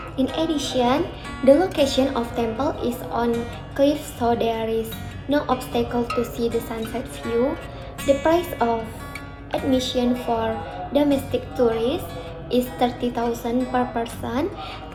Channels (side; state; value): both; identical; correlation 1.00